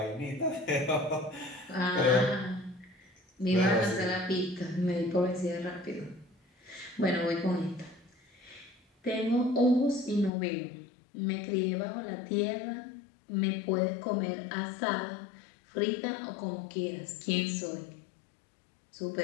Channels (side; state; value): right; drops out; at 10.3 s